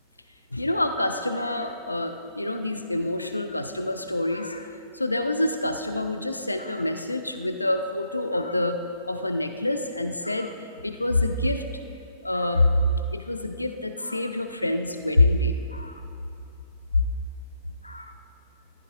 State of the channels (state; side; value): inverted; both; correlation -0.78